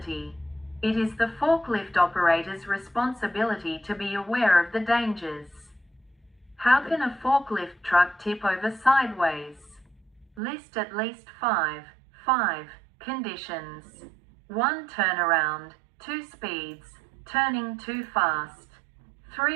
It is the forklift operator's responsibility to be aware of the dangers. How can a forklift truck tip over sideways? List at least 5 conditions. 1. Turnaround. 2. Speeds. Turning too fast.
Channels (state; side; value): drops out; left; at 10.4 s